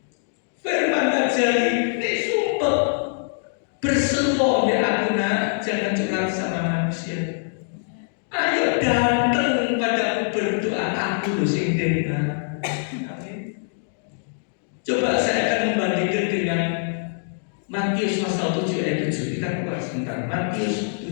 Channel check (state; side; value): silent; right; digital silence